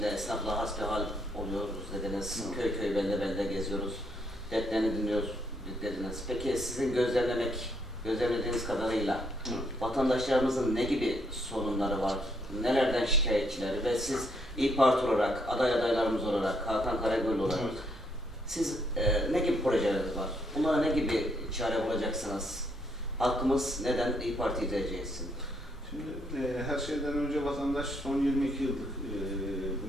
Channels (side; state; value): both; normal; correlation 0.73